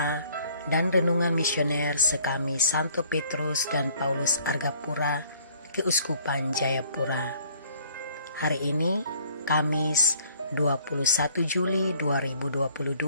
dan renungan misioner sekami Santo Petrus dan Paulus Argapura, Keuskupan Jayapura. Hari ini Kamis 21 Juli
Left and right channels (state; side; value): inverted; both; correlation -0.58